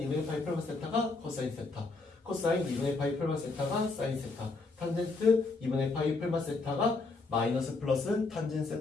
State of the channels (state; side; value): quieter; right; 3.7 dB